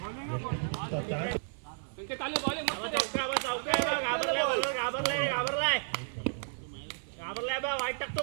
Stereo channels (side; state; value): left; silent; 56 dB below the other